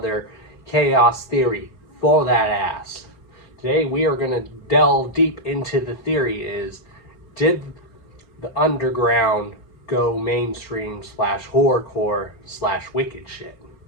Chaos theory for that ass. Today we are going to delve deep into the theory is, did the Underground go mainstream / Horrorcore / Wickedshit?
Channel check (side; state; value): right; late; 4.4 ms